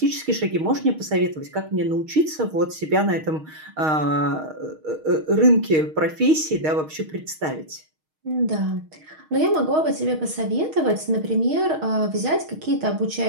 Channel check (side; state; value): left; late; 6.4 ms